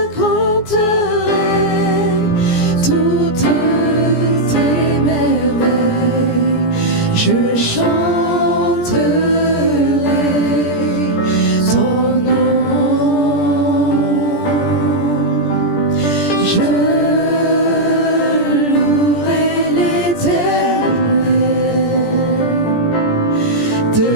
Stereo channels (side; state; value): right; late; 17 ms